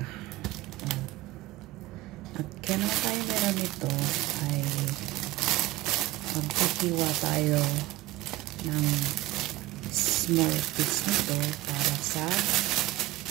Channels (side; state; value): left; quieter; 17.8 dB